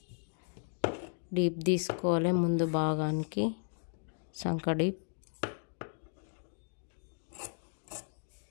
డీప్ తీసుకోవాలి ముందు భాగానికి, సంక డీప్.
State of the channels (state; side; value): silent; right; digital silence